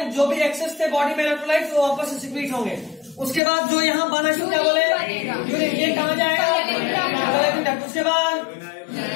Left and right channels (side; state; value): right; drops out; at 3.4 s